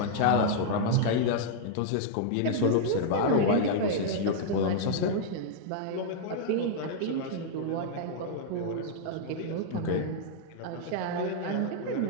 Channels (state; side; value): different; both; correlation -0.01